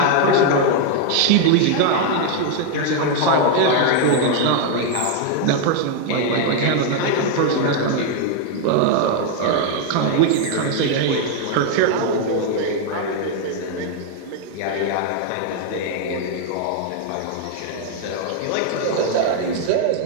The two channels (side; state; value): both; different; correlation 0.00